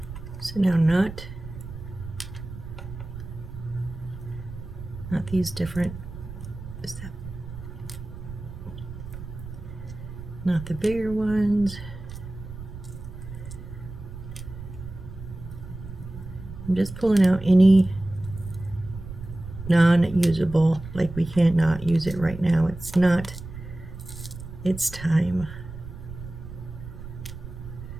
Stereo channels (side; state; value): right; noise; rumble, 12 dB below the sound